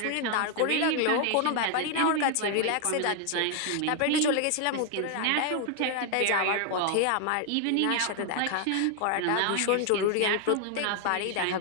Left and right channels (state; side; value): different; both; correlation 0.00